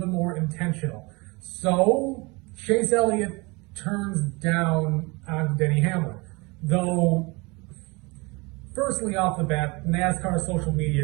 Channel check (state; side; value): quieter; left; 26.5 dB